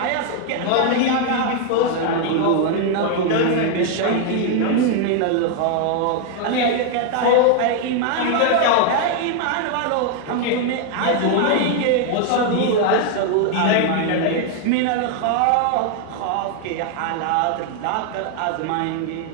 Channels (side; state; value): both; different; correlation 0.00